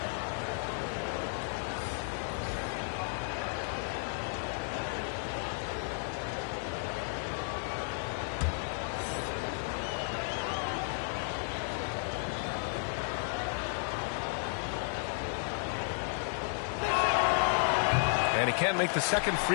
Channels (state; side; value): silent; right; 56 dB below the other